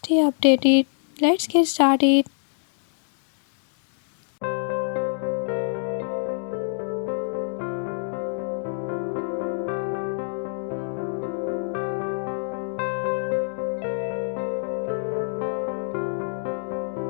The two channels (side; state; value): right; silent; digital silence